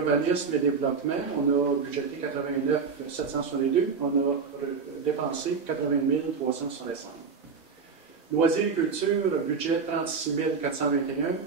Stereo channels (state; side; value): quieter; left; 5.3 dB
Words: et développement, on a budgété 89 762, on a dépensé 80 365. Loisirs et culture, budget 36 421,